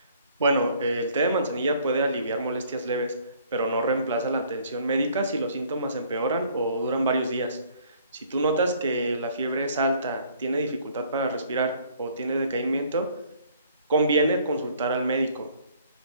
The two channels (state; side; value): inverted; both; correlation -0.59